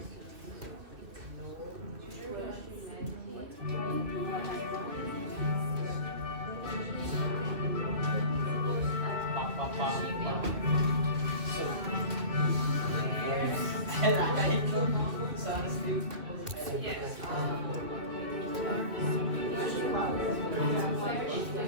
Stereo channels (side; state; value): left; late; 2.6 ms